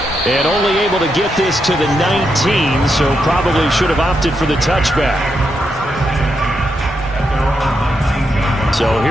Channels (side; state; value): both; normal; correlation 0.83